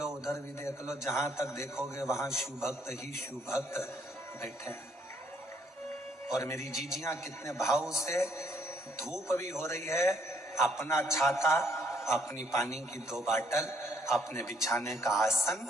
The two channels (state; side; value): normal; both; correlation 0.67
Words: उधर भी देख लो, जहां तक देखोगे वहां शिव भक्त ही शिव भक्त बैठे हैं। और मेरी जीजियां कितने भाव से, धूप भी हो रही है, अपना छाता, अपनी पानी की 2 बाटल, अपने बिछाने का आसन